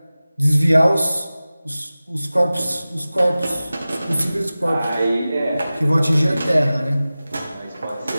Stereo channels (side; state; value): both; inverted; correlation -0.96